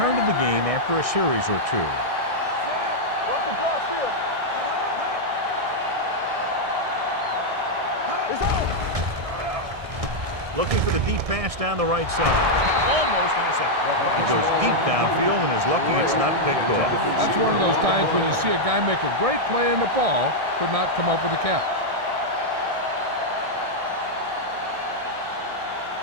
to the game after a series or two. Walk the cross field. It's out. Looking for the deep pass down the right side. Almost intercepted. He goes deep downfield and is lucky it's not picked off. That's one of those times when you see a guy make a great play in the ball, but not come up with a catch.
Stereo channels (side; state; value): left; late; 1.6 ms